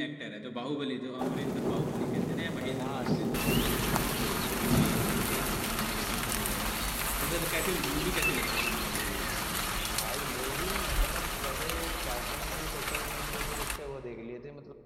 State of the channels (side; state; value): both; identical; correlation 1.00